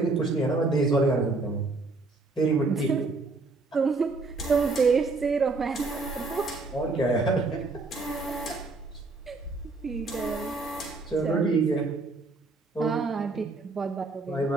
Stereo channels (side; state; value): left; quieter; 3.6 dB